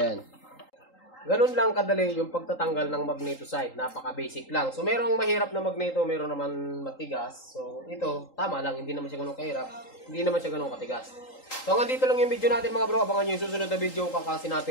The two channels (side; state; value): right; late; 3.8 ms